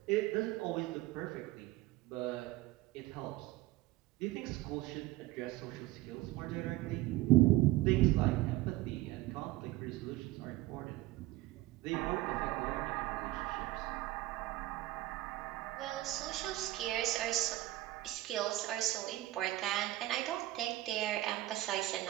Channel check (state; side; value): quieter; left; 17.1 dB